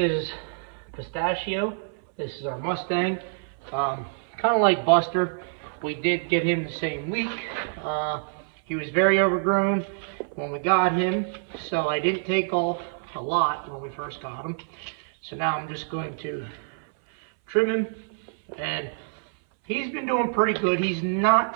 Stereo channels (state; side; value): silent; left; 59 dB below the other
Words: Pistachio. This is our Mustang. Kind of like Buster, we did get him the same week. He was very overgrown when we got him, so I didn't take off a lot when we first got him. So now I'm just going to trim him, and he's been doing pretty good. He's not